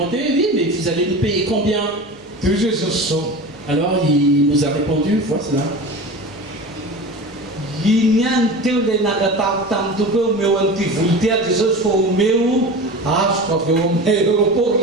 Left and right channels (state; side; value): normal; both; correlation 0.32